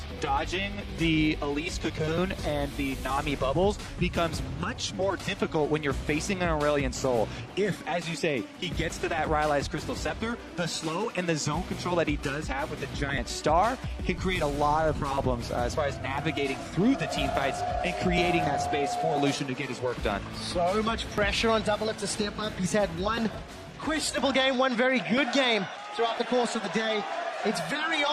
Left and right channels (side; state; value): both; identical; correlation 1.00